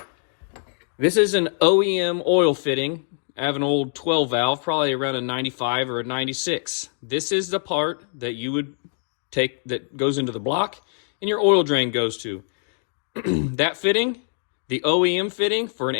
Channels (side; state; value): right; silent; digital silence